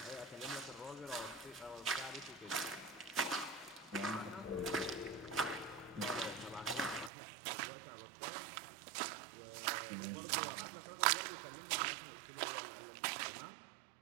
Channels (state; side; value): drops out; left; at 7.1 s